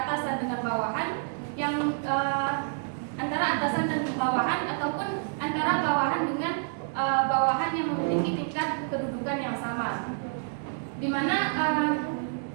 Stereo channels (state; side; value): silent; left; digital silence